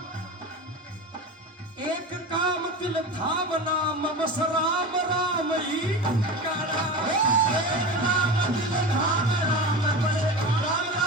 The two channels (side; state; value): both; normal; correlation 0.27